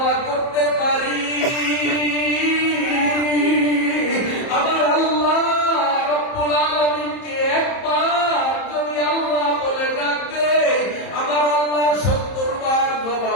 করতে পারি, আমার আল্লাহ রব্বুল আলামিনকে একবার যদি আল্লাহ বলে ডাকতে, আমার আল্লাহ 70 বার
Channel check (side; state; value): right; late; 30 ms